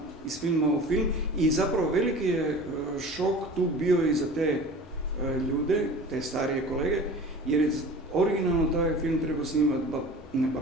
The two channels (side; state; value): both; normal; correlation 0.39